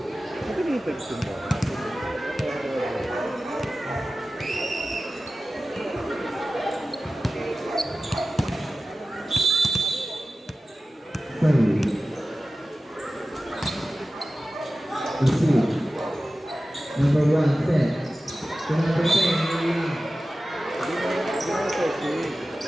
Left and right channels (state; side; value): normal; both; correlation 0.95